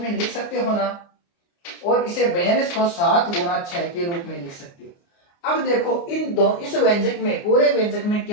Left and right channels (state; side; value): late; right; 29 ms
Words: में लिख सकते हो ना, और इसे 42 को 7 गुणा 6 के रूप में लिख सकते हो। अब देखो इस व्यंजक में, पूरे व्यंजक में